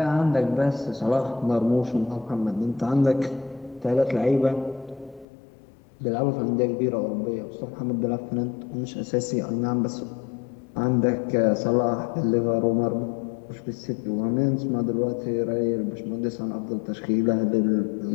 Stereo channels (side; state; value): right; drops out; at 5.2 s